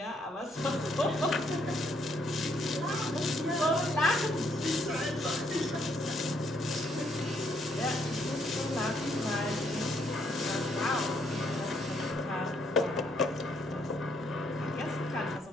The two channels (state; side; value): normal; both; correlation 0.71